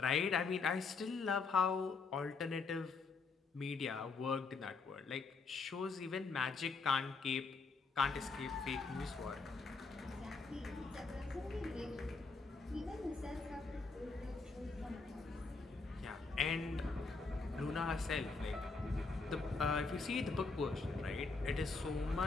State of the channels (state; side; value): quieter; right; 4.3 dB